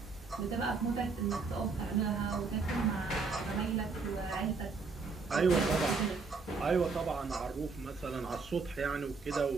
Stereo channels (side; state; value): left; quieter; 4.5 dB